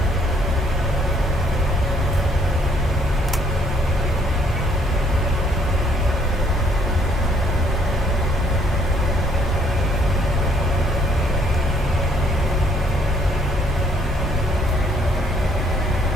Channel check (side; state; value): both; normal; correlation 0.66